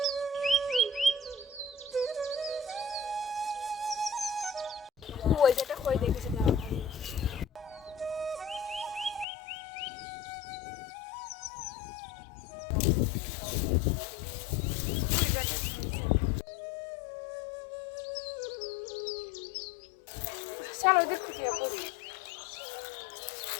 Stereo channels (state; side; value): drops out; right; at 9.2 s